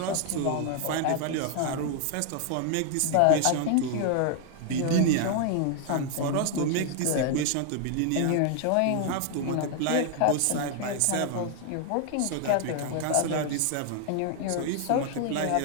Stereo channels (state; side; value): different; both; correlation 0.00